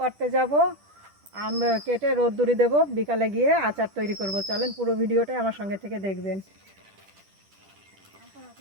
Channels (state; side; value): late; left; 10 ms